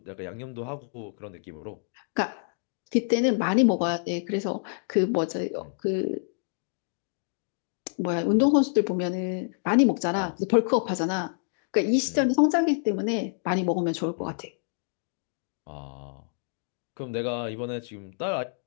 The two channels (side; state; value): right; silent; digital silence